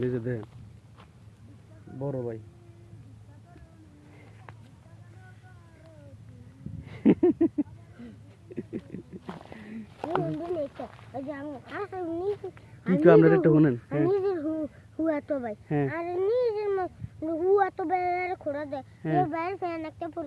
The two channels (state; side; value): identical; both; correlation 1.00